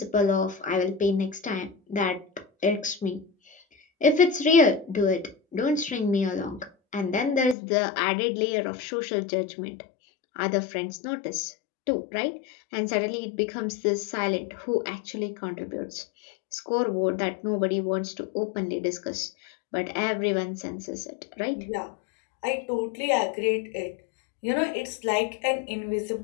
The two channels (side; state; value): right; drops out; at 7.6 s